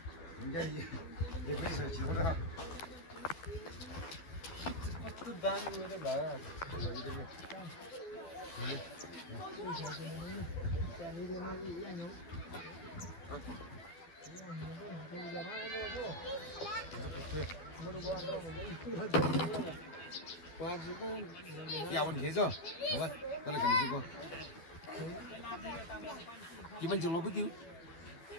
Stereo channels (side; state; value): right; late; 12 ms